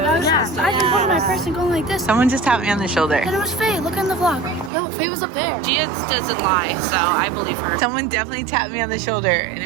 I can hold my person going like this. Someone just tapped me on the shoulder. And it was Faye. Look on the vlog. No, Faye was up there. Gia doesn't lie, so I believe her. Someone definitely tapped me on the shoulder and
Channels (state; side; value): drops out; left; at 4.7 s